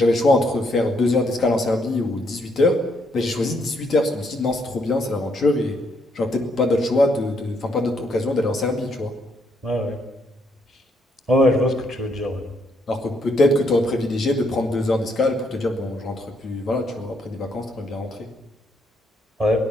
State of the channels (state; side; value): normal; both; correlation 0.73